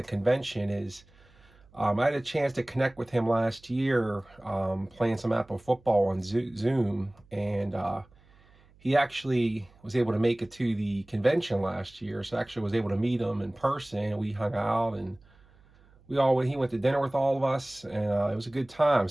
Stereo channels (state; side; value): noise; right; hum, 28 dB below the sound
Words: convention is I had a chance to connect with him last year playing some APPA football on Zoom, and he actually was able to make it to the convention last year, so I actually was able to meet him in person. We hung out, and he went to dinner with all of us, and it was a good time.